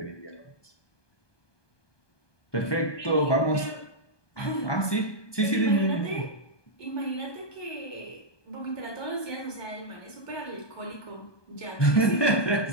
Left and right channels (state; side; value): late; right; 1.2 ms